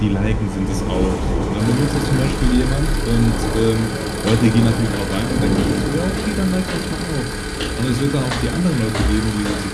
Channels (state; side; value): identical; both; correlation 1.00